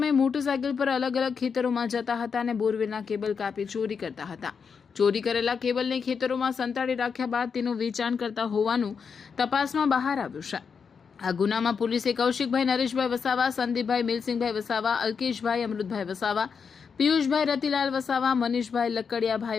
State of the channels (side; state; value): right; quieter; 6.0 dB